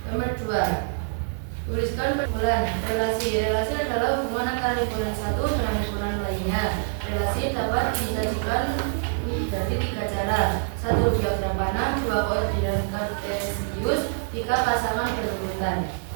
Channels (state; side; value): silent; left; digital silence